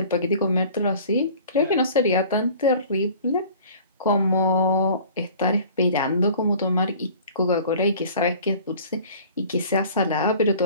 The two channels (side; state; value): both; inverted; correlation -0.46